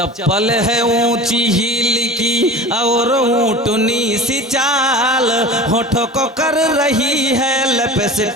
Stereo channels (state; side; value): normal; both; correlation 0.36